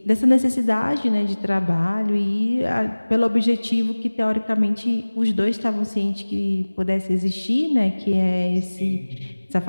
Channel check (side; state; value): both; inverted; correlation -1.00